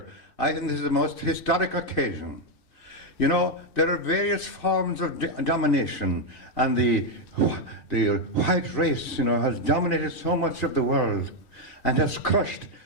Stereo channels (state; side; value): late; right; 2.6 ms